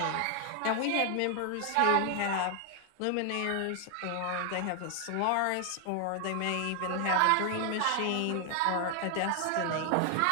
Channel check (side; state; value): both; different; correlation 0.00